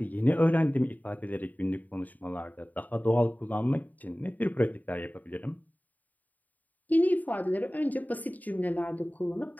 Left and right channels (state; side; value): late; right; 0.080 ms